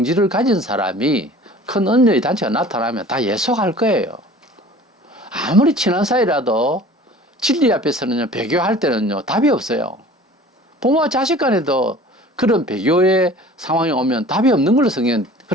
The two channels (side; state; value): both; normal; correlation 0.45